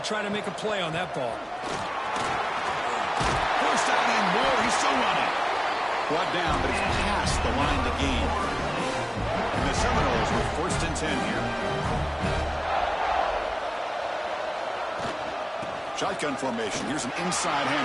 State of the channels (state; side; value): identical; both; correlation 1.00